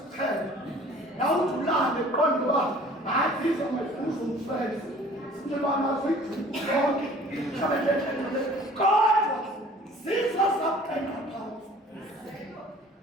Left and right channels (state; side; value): normal; both; correlation 0.50